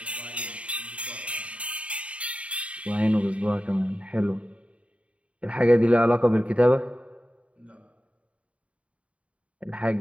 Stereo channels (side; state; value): left; late; 0.063 ms